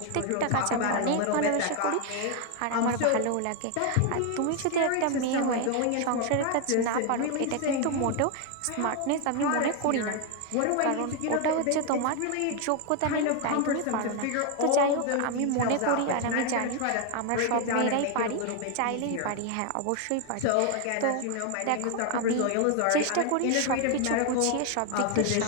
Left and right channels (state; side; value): different; both; correlation 0.01